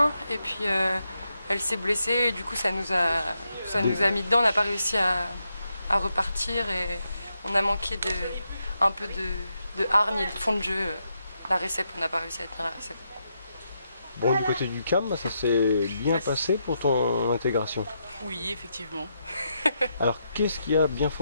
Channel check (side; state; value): both; inverted; correlation -0.82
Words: et puis elle s'est blessée et du coup ça nous a mis dedans. On n'a pas réussi à repartir et on a manqué un peu de hargne et de fond de jeu. La récep, on n'a pas réussi à tenir la récep. Bon, du côté du CAM, ça s'est bien passé pour ton intégration. Oui, effectivement. Alors, qu'est-ce qui a bien